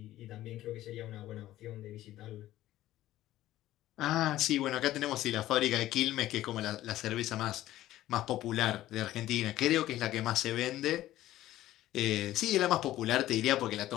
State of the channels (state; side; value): quieter; right; 14.5 dB